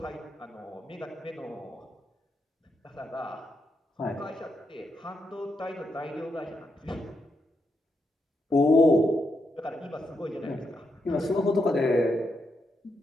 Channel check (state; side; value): normal; both; correlation 0.82